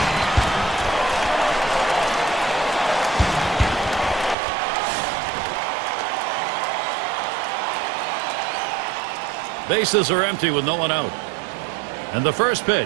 Bases are empty with no one out. And the first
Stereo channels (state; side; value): drops out; left; at 4.4 s